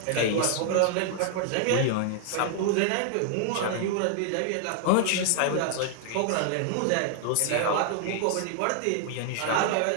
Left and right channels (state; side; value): different; both; correlation 0.00